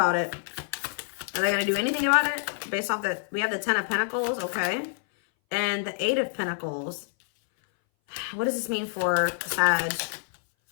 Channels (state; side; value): silent; right; 59 dB below the other